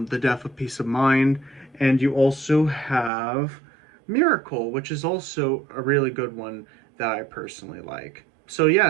The Death of Peace of Mind. And you also have Miracle, which is also a really good one that I personally like. So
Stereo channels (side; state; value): left; drops out; at 3.1 s